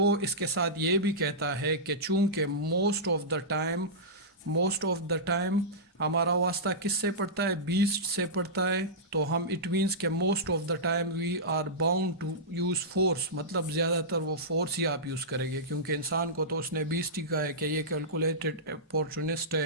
اس کے ساتھ یہ بھی کہتا ہے کہ چونکہ موسٹ آف دا ٹائم ہمارا واسطہ کس سے پڑتا ہے؟ بیسٹ سے پڑتا ہے. تو ہم اٹ مینس کہ most of the time we are bound to use force, مطلب زیادہ تر وہ فورس ہی آپ یوز کریں گے، کیونکہ انسان کو تو اس نے بیسٹ ہی کہا ہے کہ یہ کیلکولیٹڈ اپورچونسٹ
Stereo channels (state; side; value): normal; both; correlation -0.15